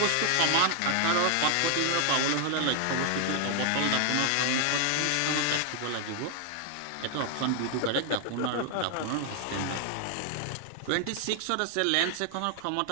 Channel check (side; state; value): both; different; correlation 0.00